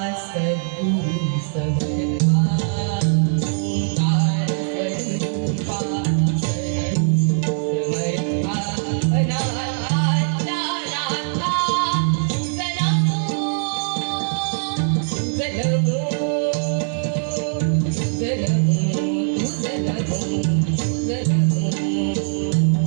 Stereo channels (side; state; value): left; silent; digital silence